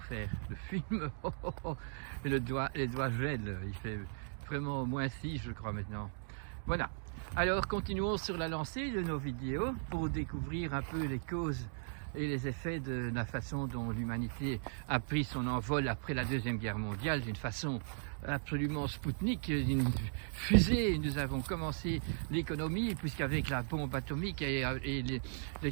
faire le film, et les doigts gèlent, il fait vraiment -6 je crois maintenant. Voilà, alors continuons sur la lancée de nos vidéos pour découvrir un peu les causes et les effets de la façon dont l'humanité a pris son envol après la Deuxième Guerre mondiale d'une façon absolument spoutnik, une fusée. Nous avons commencé l'économie puisqu'avec la bombe atomique et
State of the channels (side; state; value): left; silent; digital silence